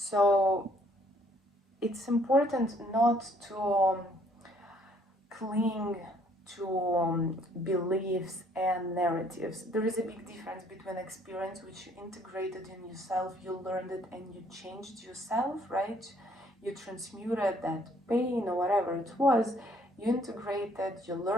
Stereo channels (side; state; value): both; normal; correlation 0.63